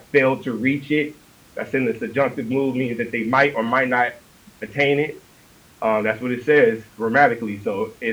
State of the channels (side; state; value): both; identical; correlation 1.00